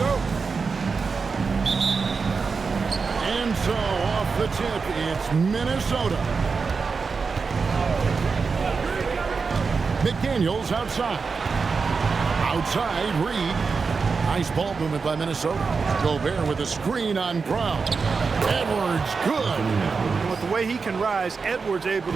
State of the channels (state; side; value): quieter; left; 4.9 dB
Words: And so, off the tip, it's Minnesota. McDaniels outside. Outside, Reed. Nice ball movement by Minnesota. Gobert with a screen on Brown. Edwards, good. With the way he can rise, Edwards able